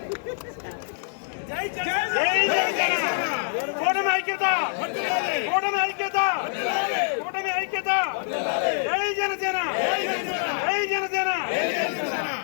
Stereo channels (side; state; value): right; silent; 61 dB below the other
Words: కూటమి ఐక్యత, కూటమి ఐక్యత, కూటమి ఐక్యత. జై జనసేన, జై జనసేన.